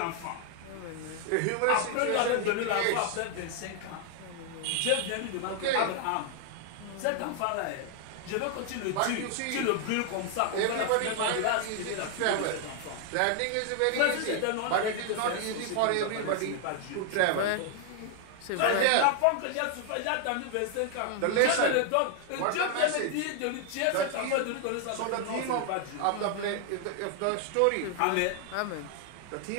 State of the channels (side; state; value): both; different; correlation 0.00